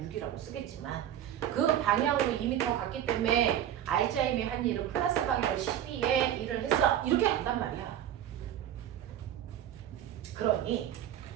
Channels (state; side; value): quieter; left; 10.9 dB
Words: 6이라고 쓰겠지만 그 방향으로 2m 갔기 때문에 알자힘이 한 일은 플러스 방향으로 12에 일을 했어. 이렇게 간단 말이야. 그러니